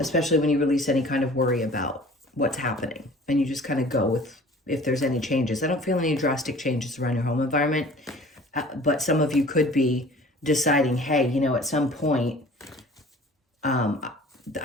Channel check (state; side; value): normal; both; correlation 0.47